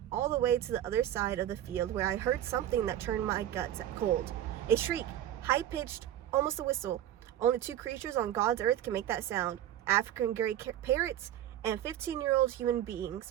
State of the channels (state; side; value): quieter; left; 11.9 dB